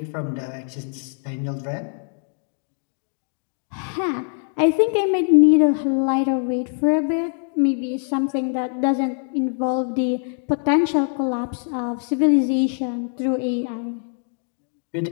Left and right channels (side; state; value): right; silent; 58 dB below the other